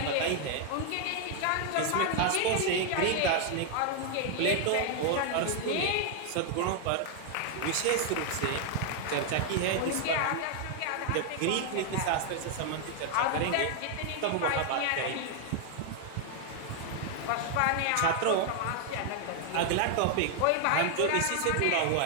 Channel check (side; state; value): both; different; correlation 0.00